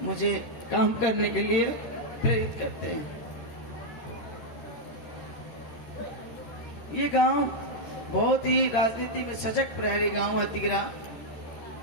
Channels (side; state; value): right; late; 13 ms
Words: मुझे काम करने के लिए प्रेरित करते हैं। ये गांव बहुत ही राजनीति में सजग प्रहरी गांव है तिगरा।